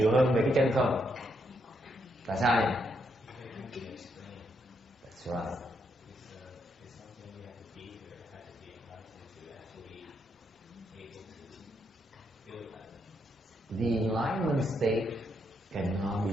hơn về cái chân không? Tại sao vậy? That's right. The enlightenment state cannot be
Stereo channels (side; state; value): both; normal; correlation 0.78